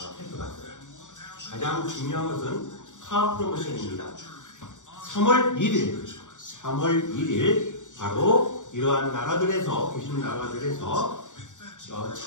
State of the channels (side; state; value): right; late; 0.86 ms